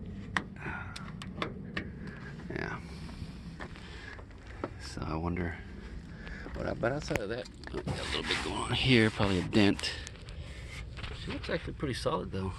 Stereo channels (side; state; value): both; identical; correlation 1.00